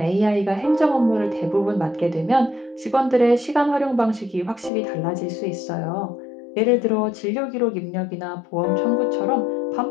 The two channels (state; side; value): drops out; right; at 4.7 s